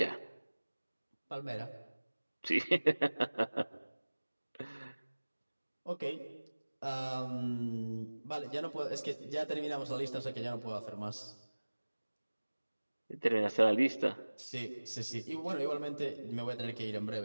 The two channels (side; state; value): both; inverted; correlation -1.00